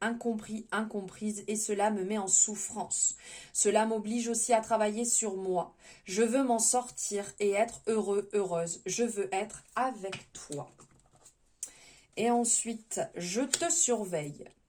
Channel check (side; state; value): both; identical; correlation 1.00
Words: incompris, incomprise et cela me met en souffrance. Cela m'oblige aussi à travailler sur moi. Je veux m'en sortir et être heureux, heureuse. Je veux être avec toi. Et ensuite, je te surveille.